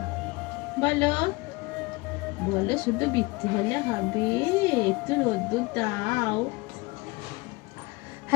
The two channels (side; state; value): right; quieter; 24.2 dB